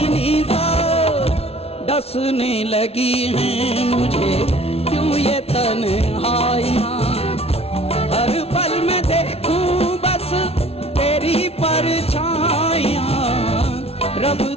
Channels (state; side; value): late; right; 0.30 ms